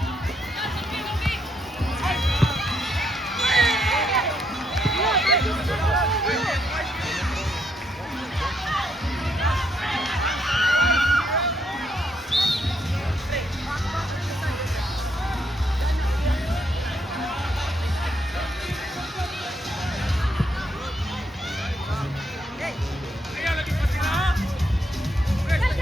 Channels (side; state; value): both; normal; correlation 0.75